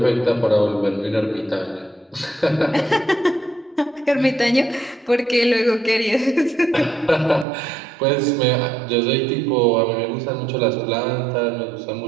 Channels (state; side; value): drops out; left; at 7.5 s